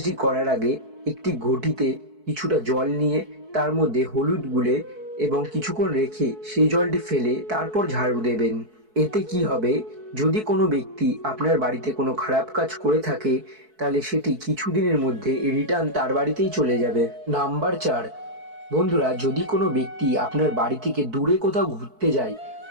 করার আগে একটি ঘটিতে কিছুটা জল নিয়ে তার মধ্যে হলুদ গুলে এবং কিছুক্ষণ রেখে সেই জলটি ফেলে তারপর ঝাড়ু দেবেন। এতে কি হবে, যদি কোনো ব্যক্তি আপনার বাড়িতে কোনো খারাপ কাজ করে থাকে, তাহলে সেটি কিছুদিনের মধ্যে রিটার্ন তার বাড়িতেই চলে যাবে। নাম্বার 4, বন্ধুরা, যদি কোনো ব্যক্তি আপনার বাড়ি থেকে দূরে কোথাও ঘুরতে যায়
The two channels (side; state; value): left; late; 4.6 ms